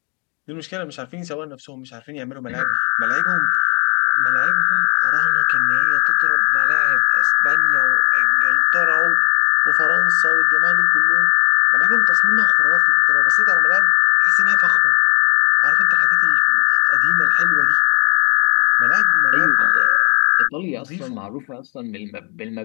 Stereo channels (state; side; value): quieter; right; 33.4 dB